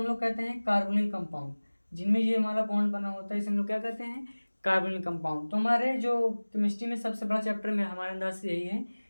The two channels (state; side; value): inverted; both; correlation -1.00